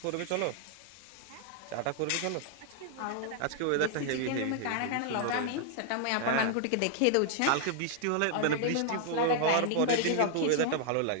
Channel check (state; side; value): different; both; correlation 0.00